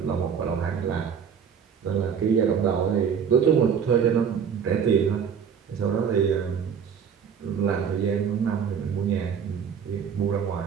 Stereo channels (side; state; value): left; quieter; 7.3 dB